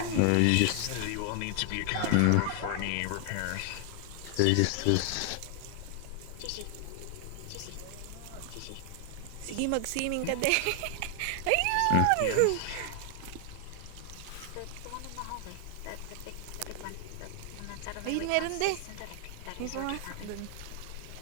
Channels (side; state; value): both; different; correlation 0.00